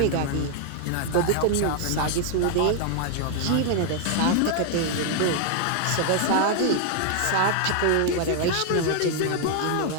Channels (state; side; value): different; both; correlation 0.00